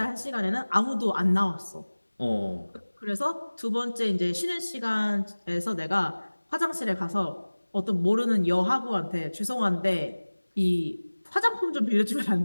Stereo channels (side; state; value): both; inverted; correlation -1.00